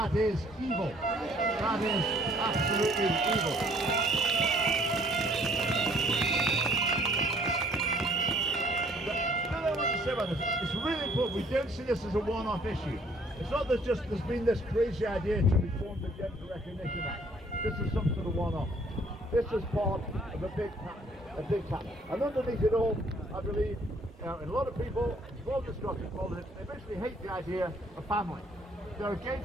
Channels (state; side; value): normal; both; correlation 0.61